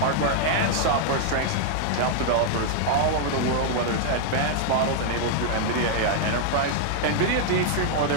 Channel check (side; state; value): both; different; correlation 0.00